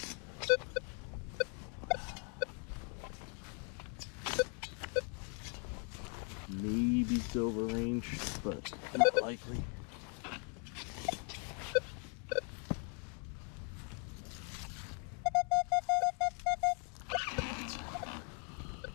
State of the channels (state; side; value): quieter; right; 38.7 dB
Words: Maybe silver range, but not likely.